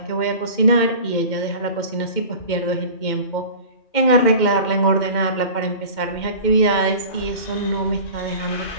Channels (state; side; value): late; right; 2.1 ms